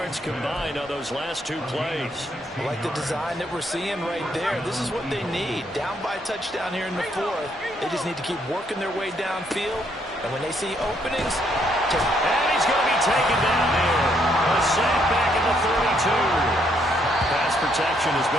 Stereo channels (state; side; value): normal; both; correlation 0.72